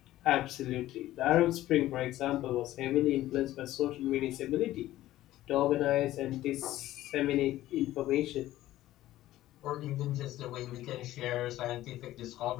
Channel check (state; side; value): quieter; right; 14.9 dB